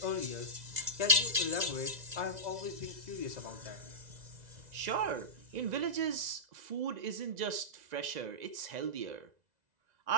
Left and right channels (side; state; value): left; late; 2.0 ms